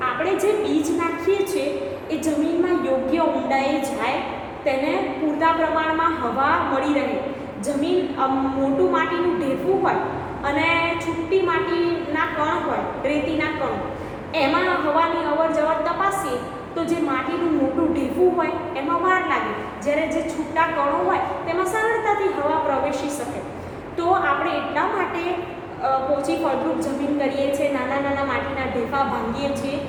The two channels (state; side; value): identical; both; correlation 1.00